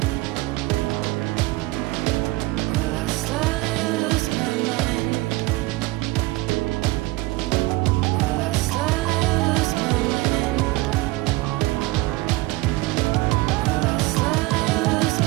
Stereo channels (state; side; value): quieter; left; 20.5 dB